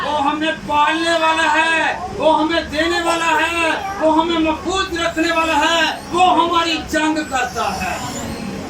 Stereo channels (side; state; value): both; identical; correlation 1.00